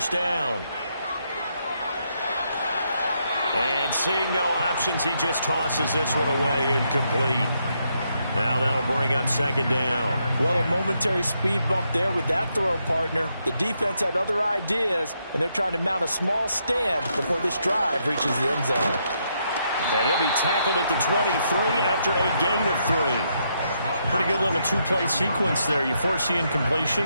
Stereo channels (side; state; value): both; inverted; correlation -0.78